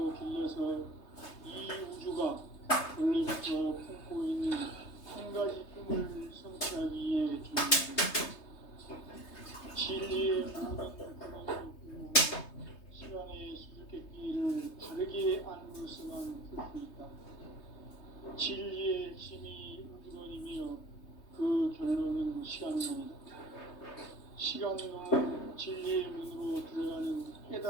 길러서 이 우주가 원래부터 품고 있는 한 가지 꿈을 성취하기 위해 존재합니다. 진리의 모든 근원으로 시간의 수수께끼를 바르게 안으로서만 풀 수 있다. 진리의 핵심이 우주론이며 그 결론은 시간론이다. 시간론은 진리의 문으로 들어가는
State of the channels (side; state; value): right; late; 3.3 ms